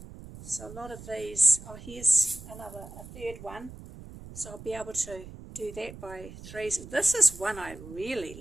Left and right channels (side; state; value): right; noise; rumble, 15 dB below the sound